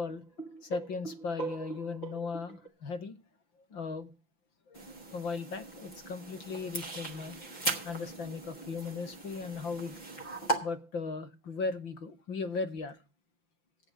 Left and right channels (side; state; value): right; late; 5.9 ms